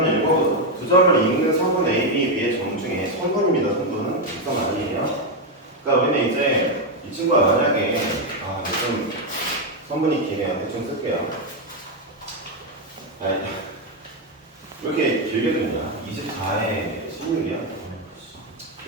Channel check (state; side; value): normal; both; correlation 0.04